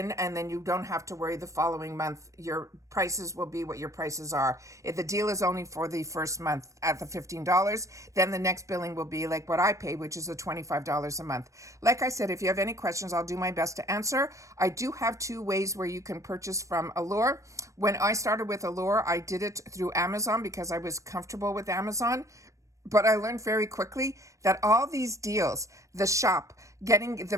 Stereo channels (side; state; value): left; late; 0.15 ms